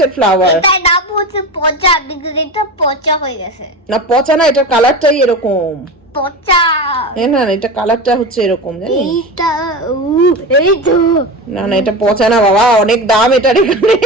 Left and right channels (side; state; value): both; normal; correlation 0.26